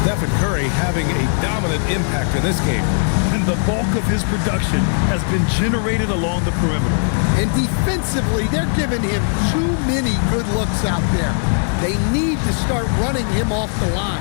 Stephen Curry having a dominant impact in this game. And the bulk of his production has been generated along the perimeter. And defensively, they're giving him too many good looks out there. They need to start running him off the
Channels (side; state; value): right; silent; digital silence